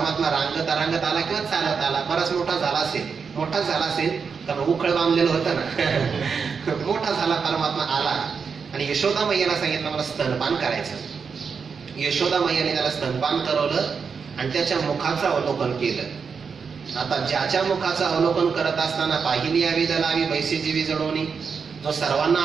रांगत आला किंवा चालत आला. बराच मोठा झाला असेल कारण उखळ बांधलेलं होतं ना. मोठा झाला परमात्मा आला आणि यशोदा मैयाला सांगितलं मला स्तनपान करायचं. यशोदा मैयाने त्याला स्तनपान करवलं आणि त्याच्या मुखाचं अवलोकन केलं. आता ज्याच्या मुखाचं अवलोकन करत असताना पाहिली यावी दलावी बैसे जीवी जडवणी जो सर्वांना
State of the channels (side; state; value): left; quieter; 5.8 dB